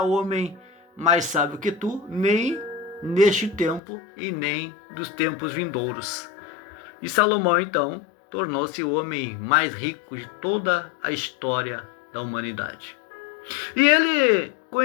homem mais sábio que tu, nem neste tempo e nem dos tempos vindouros. E Salomão então tornou-se o homem mais rico de toda a história da humanidade. E ele,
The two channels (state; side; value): drops out; right; at 3.8 s